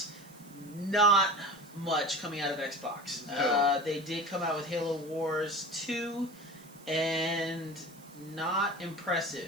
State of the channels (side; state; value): right; noise; hiss, 24 dB below the sound